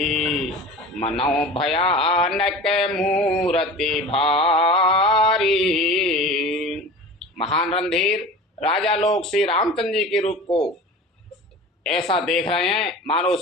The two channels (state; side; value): normal; both; correlation 0.36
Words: मनौ भयानक मूर्ति भारी। महान रणधीर राजा लोग श्री रामचंद्र जी के रूप को ऐसा देख रहे हैं मानो